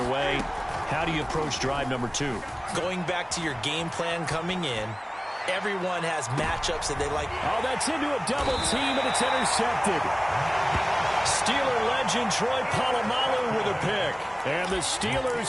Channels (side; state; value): both; identical; correlation 1.00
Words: way. How do you approach drive number 2? Going back to your game plan coming in, everyone has matchups that they like. Oh, that's into a double team, and it's intercepted. Steeler legend Troy Polamalu with a pick. And the